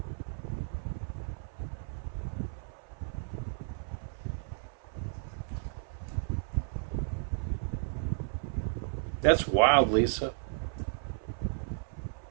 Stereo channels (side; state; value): left; silent; 55 dB below the other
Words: That's wild, Lisa.